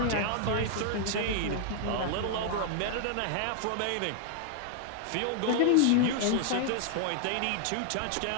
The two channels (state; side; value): different; both; correlation 0.00